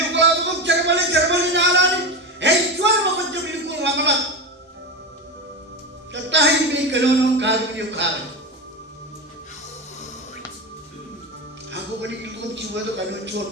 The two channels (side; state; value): both; normal; correlation 0.19